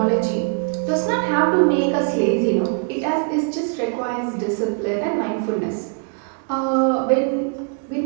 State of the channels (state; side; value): quieter; left; 39.1 dB